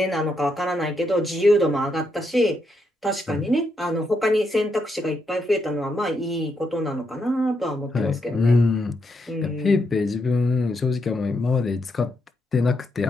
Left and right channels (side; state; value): both; normal; correlation 0.80